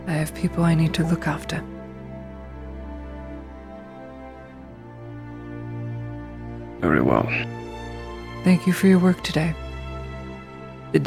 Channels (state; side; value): identical; both; correlation 1.00